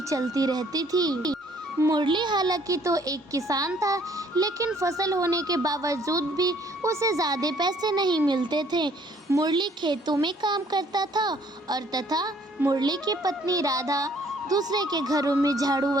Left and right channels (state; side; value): normal; both; correlation 0.61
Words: चलती रहती थी। मुरली हालांकि तो एक किसान था, लेकिन फसल होने के बावजूद भी उसे ज्यादा पैसे नहीं मिलते थे। मुरली खेतों में काम करता था और तथा मुरली की पत्नी राधा दूसरे के घरों में झाड़ू